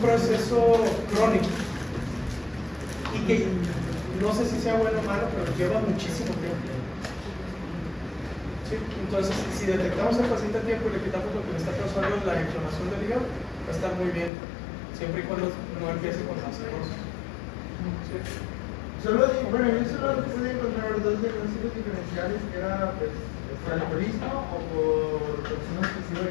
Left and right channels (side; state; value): right; drops out; at 14.3 s